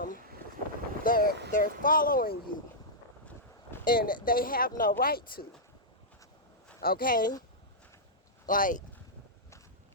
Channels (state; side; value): normal; both; correlation -0.10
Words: they're following you, and they have no right to. Okay, like,